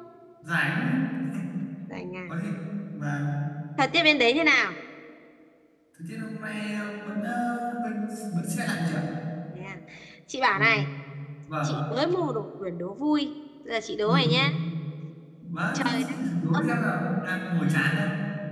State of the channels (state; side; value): identical; both; correlation 1.00